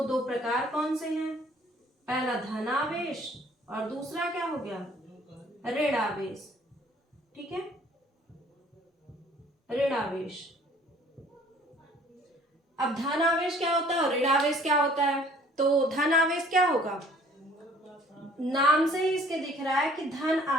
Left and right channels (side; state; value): both; normal; correlation 0.56